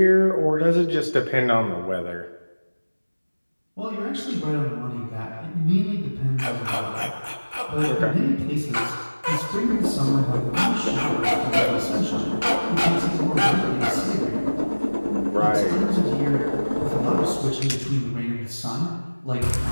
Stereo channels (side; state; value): both; inverted; correlation -1.00